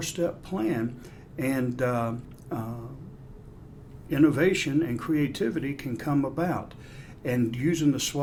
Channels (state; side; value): identical; both; correlation 1.00